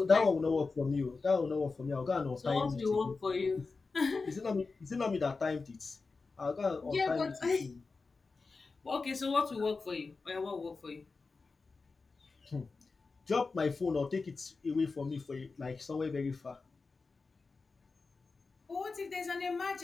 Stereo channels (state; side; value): quieter; right; 4.2 dB